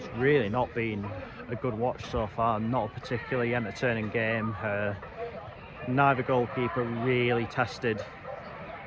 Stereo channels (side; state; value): both; identical; correlation 1.00